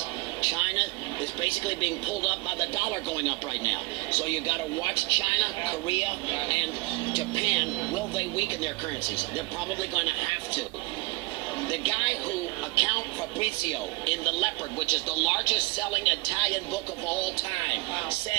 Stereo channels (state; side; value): quieter; left; 25.1 dB